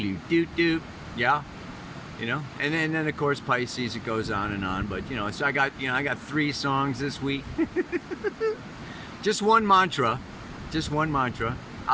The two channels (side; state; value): both; identical; correlation 1.00